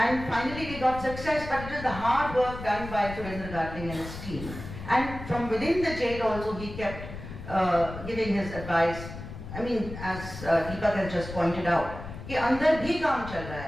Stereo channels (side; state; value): left; noise; rumble, 11 dB below the sound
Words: finally we got success, but it was the hard work done by Surendra Gatling and his team. And from within the jail also he kept giving his advice. I mean, as Deepak has just pointed out, कि अंदर भी काम चल रहा